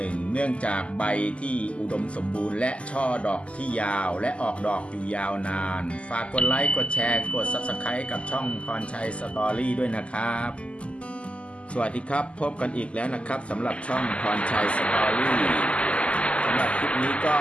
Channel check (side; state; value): right; late; 0.057 ms